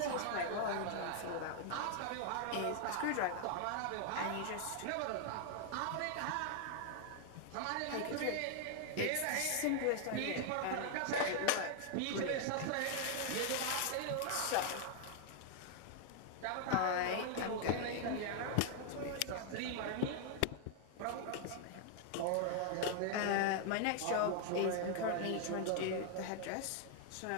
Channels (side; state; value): both; different; correlation 0.00